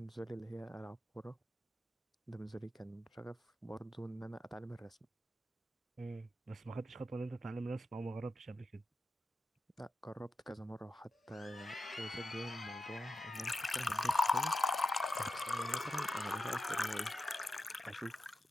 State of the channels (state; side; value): normal; both; correlation 0.89